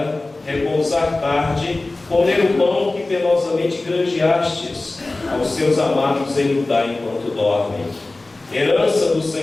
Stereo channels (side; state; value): right; quieter; 3.1 dB